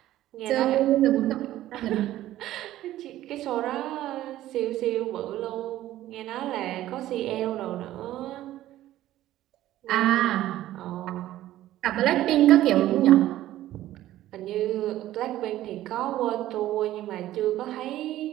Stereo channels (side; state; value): left; quieter; 14.2 dB